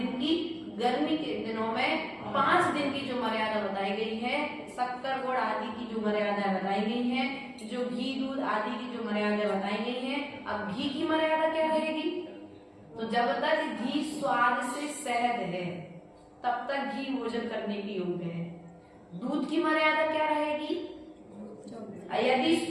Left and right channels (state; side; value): identical; both; correlation 1.00